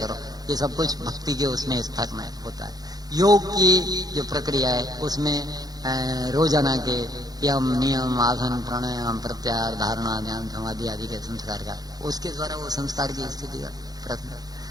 ये सब कुछ भक्ति के उसमें स्तर में होता है। योग की जो प्रक्रिया है उसमें रोजाना के यम, नियम, आसन, प्राणायाम, प्रत्याहार, धारणा, ध्यान, समाधि आदि के संस्कार का, उसके द्वारा वो संस्कार की स्थिति का प्रश्न।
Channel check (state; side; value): late; left; 0.19 ms